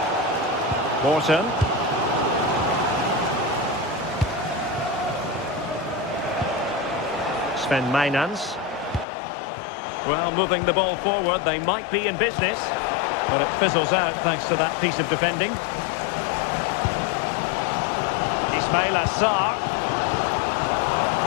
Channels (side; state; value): right; drops out; at 9.1 s